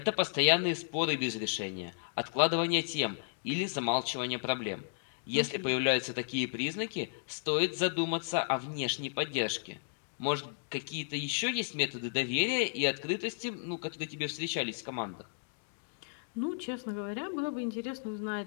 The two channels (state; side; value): silent; right; digital silence